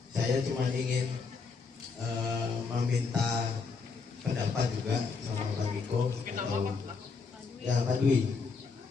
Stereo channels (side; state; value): right; quieter; 4.8 dB